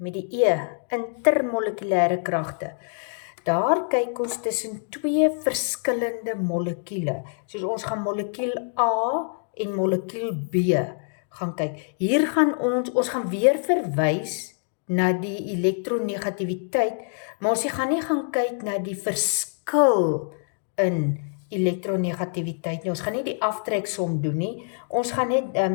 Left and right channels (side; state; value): right; silent; 62 dB below the other